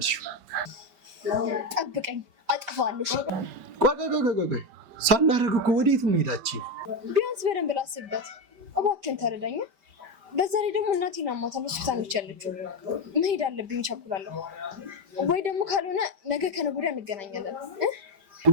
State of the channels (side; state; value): left; late; 5.1 ms